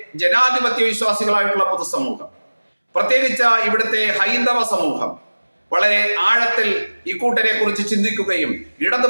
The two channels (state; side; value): inverted; both; correlation -1.00